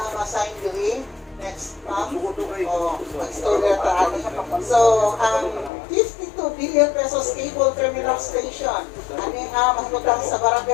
ang assign diri. Next, ma'am. Mag-story na So, ang 52 billion pesos cable terminal station, ano ang mahutang sa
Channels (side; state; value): right; drops out; at 5.7 s